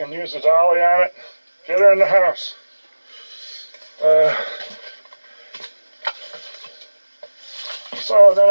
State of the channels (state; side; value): inverted; both; correlation -1.00